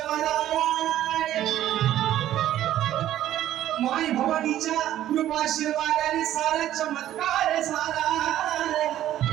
माय भवानीच्या कृपाशीर्वादाने सारा चमत्कार झाला।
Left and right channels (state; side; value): quieter; left; 12.6 dB